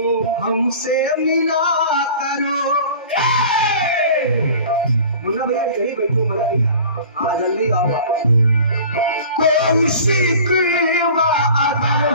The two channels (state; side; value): inverted; both; correlation -0.43